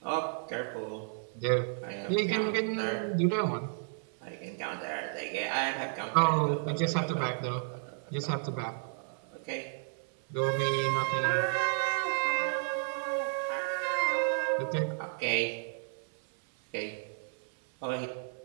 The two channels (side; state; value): left; silent; 56 dB below the other